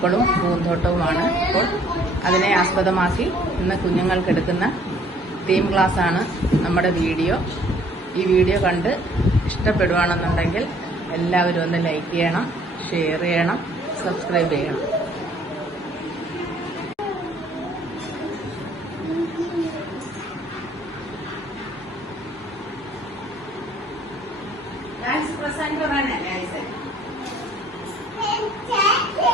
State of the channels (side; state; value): both; normal; correlation 0.59